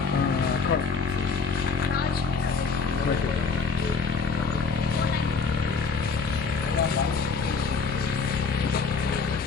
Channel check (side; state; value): right; quieter; 4.8 dB